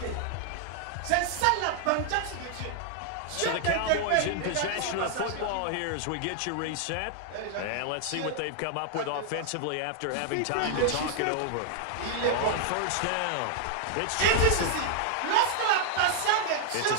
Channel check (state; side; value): different; both; correlation -0.01